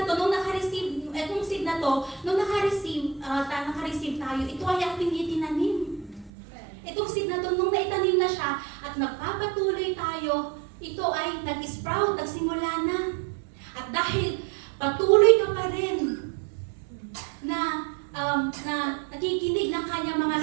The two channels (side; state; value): left; drops out; at 6.3 s